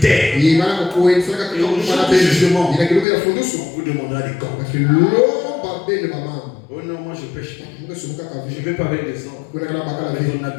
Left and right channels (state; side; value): drops out; right; at 3.1 s